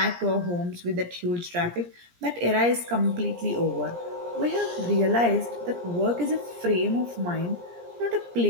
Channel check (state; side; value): late; left; 17 ms